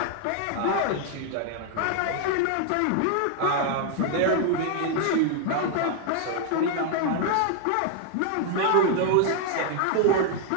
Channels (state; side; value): different; both; correlation 0.00